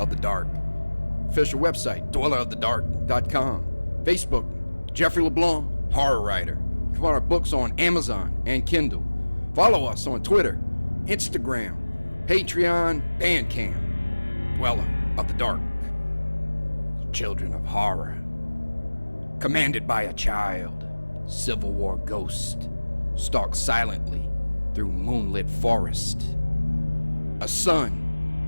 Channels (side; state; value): both; inverted; correlation -1.00